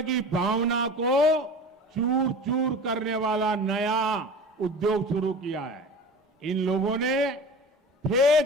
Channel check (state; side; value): normal; both; correlation 0.36